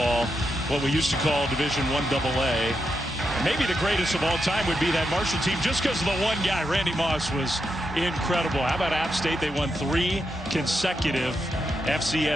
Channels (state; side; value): normal; both; correlation 0.84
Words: what we used to call Division I AA. Maybe the greatest of all time would be that Marshall team, just because of the one guy. Randy Moss was incredible. How about App State? They won 3 consecutive